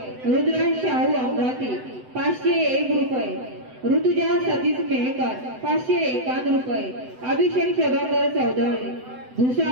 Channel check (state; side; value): late; left; 7.9 ms